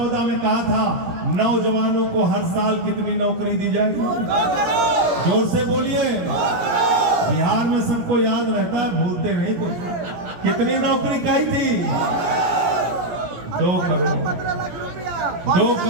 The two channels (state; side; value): late; left; 17 ms